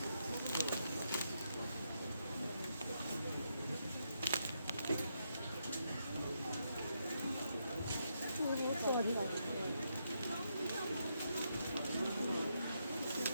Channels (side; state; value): both; inverted; correlation -0.80